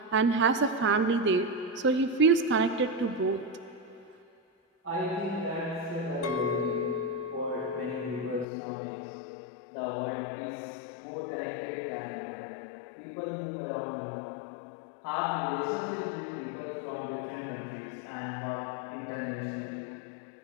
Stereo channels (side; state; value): right; drops out; at 8.5 s